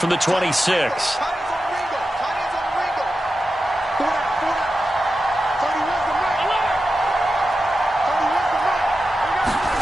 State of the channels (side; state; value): both; normal; correlation 0.91